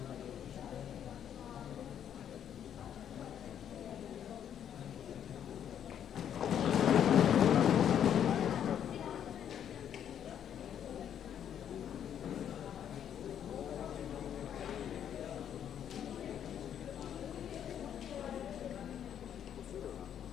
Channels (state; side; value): quieter; right; 9.4 dB